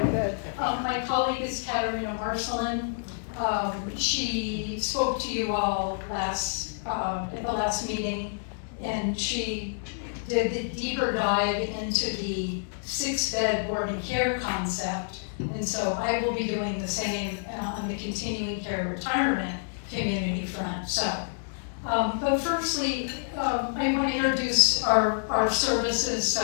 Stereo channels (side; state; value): right; silent; digital silence